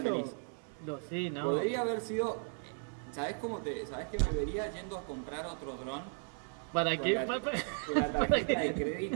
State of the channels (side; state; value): left; silent; 54 dB below the other